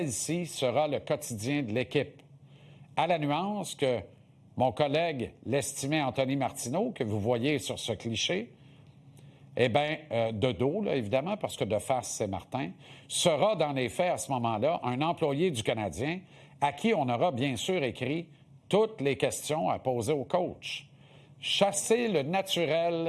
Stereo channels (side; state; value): both; identical; correlation 1.00